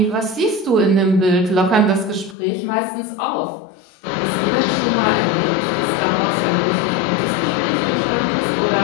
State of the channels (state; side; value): drops out; right; at 2.4 s